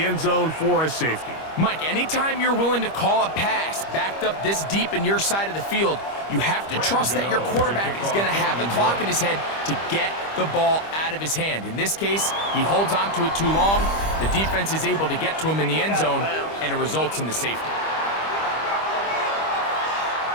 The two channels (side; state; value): right; late; 25 ms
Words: end zone for a safety. Mike, anytime you're willing to call a pass backed up this deep in your side of the field, you have to trust that your quarterback is going to have the clock in his head to get the ball out of his hand. In this case, he holds on to it too long. The defense is able to get to him in the end zone, and it results in the safety.